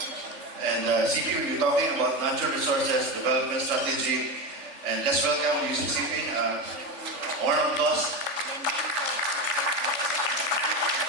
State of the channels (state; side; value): late; left; 3.5 ms